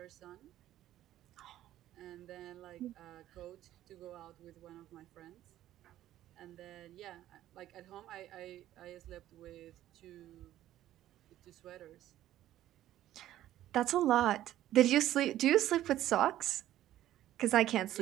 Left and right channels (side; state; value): left; quieter; 13.2 dB